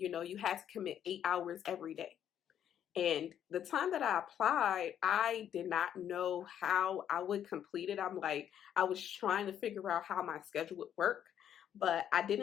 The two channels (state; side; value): quieter; right; 9.8 dB